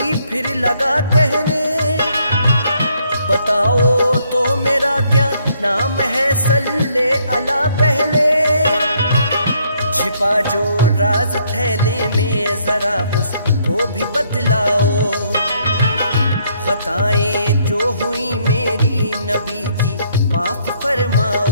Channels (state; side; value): inverted; both; correlation -0.69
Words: फिर लगा कहने। बताओ तो मेरा क्या नाम है, सल्ले अला पहले। छिपा जो राज थैले में जरा उसको भी बतलाओ। खताएं जो हुई मेरी नबी जी माफ